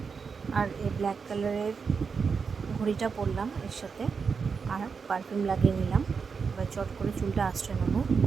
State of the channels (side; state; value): left; quieter; 5.5 dB